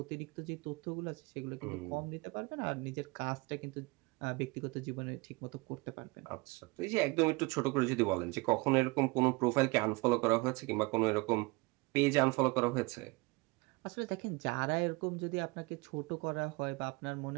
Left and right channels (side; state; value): left; quieter; 25.3 dB